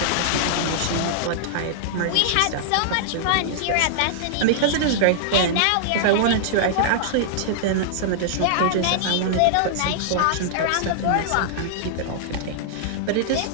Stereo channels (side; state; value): both; different; correlation -0.01